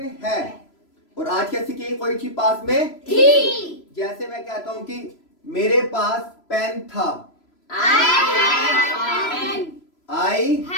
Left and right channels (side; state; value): right; late; 3.0 ms